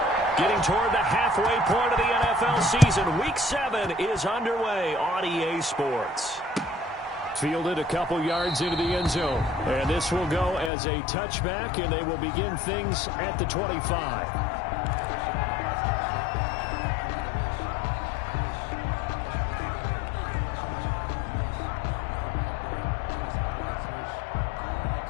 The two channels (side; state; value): right; drops out; at 10.7 s